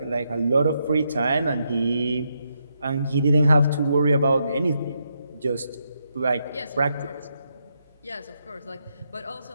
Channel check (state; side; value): inverted; both; correlation -0.80